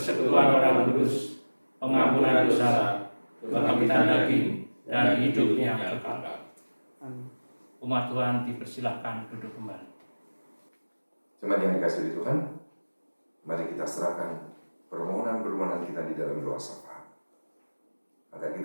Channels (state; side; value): inverted; both; correlation -1.00